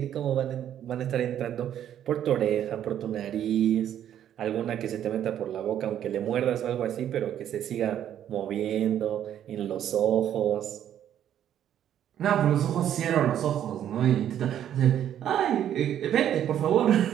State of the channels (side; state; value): left; quieter; 10.5 dB